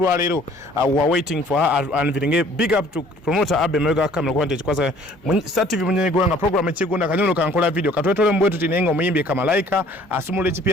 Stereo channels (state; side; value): normal; both; correlation 0.55